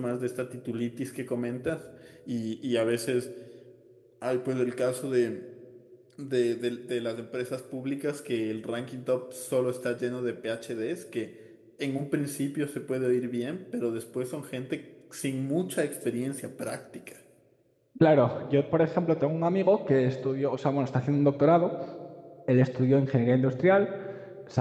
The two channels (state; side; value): identical; both; correlation 1.00